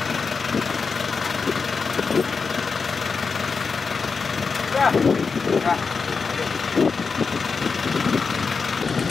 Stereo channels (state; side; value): quieter; right; 5.0 dB